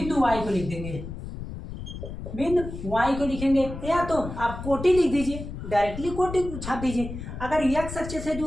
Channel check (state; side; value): noise; left; rumble, 9 dB below the sound